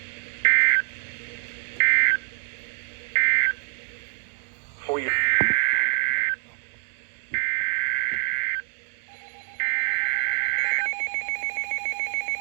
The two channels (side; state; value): left; silent; 61 dB below the other